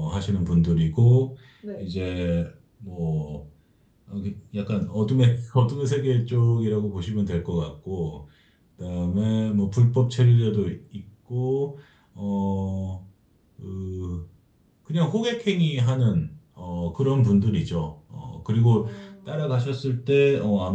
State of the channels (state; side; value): identical; both; correlation 1.00